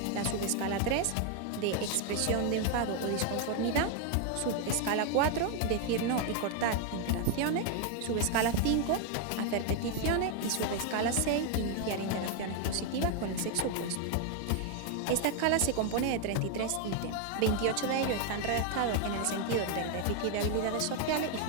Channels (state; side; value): different; both; correlation 0.01